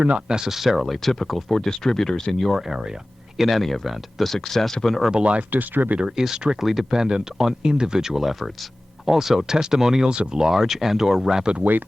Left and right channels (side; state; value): both; normal; correlation 0.97